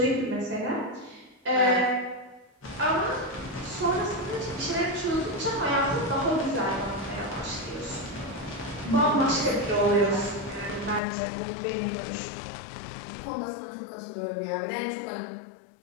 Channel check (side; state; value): right; drops out; at 11.0 s